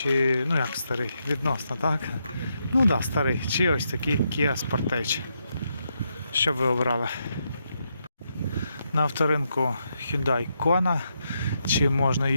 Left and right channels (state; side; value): inverted; both; correlation -0.81